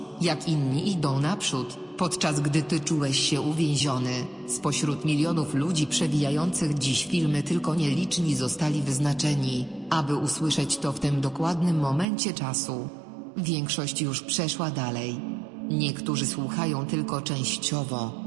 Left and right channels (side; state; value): left; drops out; at 12.1 s